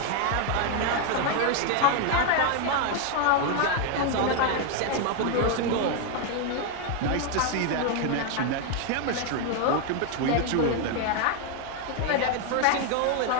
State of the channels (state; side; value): different; both; correlation 0.01